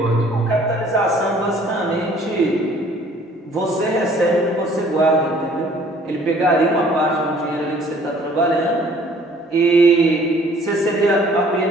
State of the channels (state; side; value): normal; both; correlation 0.56